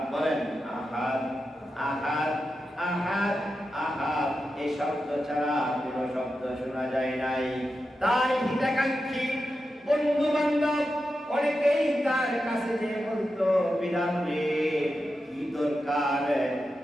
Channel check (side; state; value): both; normal; correlation 0.90